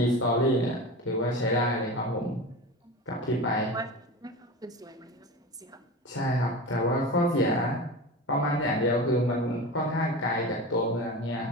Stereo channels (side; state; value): both; normal; correlation 0.29